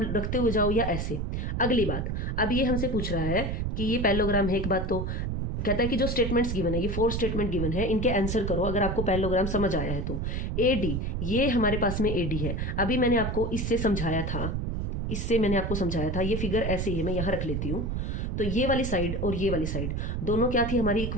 रखते हुए जाओ या ऐसे। अगली बात, अब ये हमसे पूछ रहा है कि ये पैरेललोग्राम है। एक बात तो कहता है कि जो स्टेटमेंट्स गिवन है, ये 4 स्टेटमेंट गिवन है, इनके आंसर करो अगर आपको पैरेललोग्राम समझ आया है तो। AD, ये हमारे पास में AD है। अभी मैंने आपको इससे समझाया था, ये फिगर ऐसे ही है, मैं यहाँ रख लेती हूँ। तो ये वाली साइड और ये वाली साइड दोनों क्या थी हमारी?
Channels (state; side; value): noise; right; rumble, 2 dB below the sound